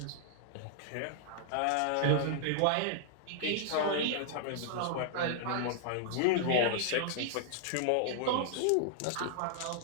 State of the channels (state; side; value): different; both; correlation -0.01